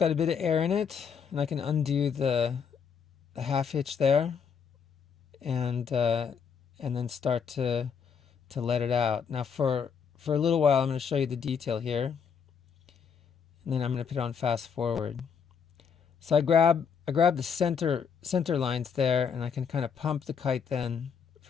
a bit of air in it, and I can undo the half hitch there, and then start to let it out. Now for a little while, I'm going to show you the detail here, and then I'm going to put on fast forward. So I grab the center lines there, and I can kind of pump the kite then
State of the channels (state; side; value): quieter; right; 6.7 dB